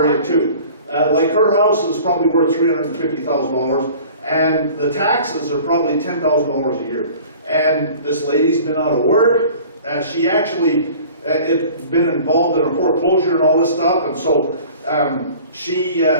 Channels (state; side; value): inverted; both; correlation -0.45